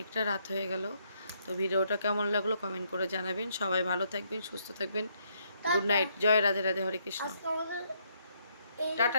রাত হয়ে গেল। তো ভিডিওটা কেমন লাগলো কমেন্ট করে জানাবেন। সবাই ভালো থাকবেন, সুস্থ থাকবেন। Good night. জয় রাধে রাধে, হরে কৃষ্ণ। আজকে আমাদের এই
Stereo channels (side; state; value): both; inverted; correlation -0.72